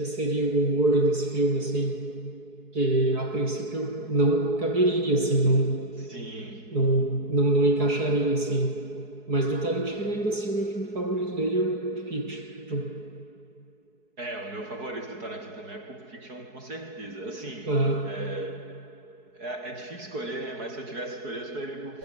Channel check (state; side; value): late; left; 4.7 ms